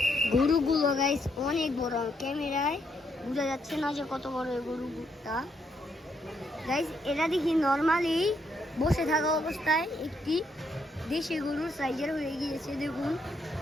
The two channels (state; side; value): normal; both; correlation 0.76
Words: গরুগুলো গাইস অনেক বড়, ক্যামেরায় বোঝা যাচ্ছে না যে কত বড় এই গরুটা। গাইস এটা দেখি নর্মালি বসে থাকা অবস্থায় একটি দেশি গরুর সাইজের হয়ে গিয়েছে। দেখুন